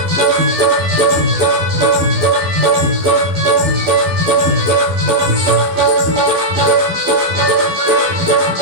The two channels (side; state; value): left; late; 12 ms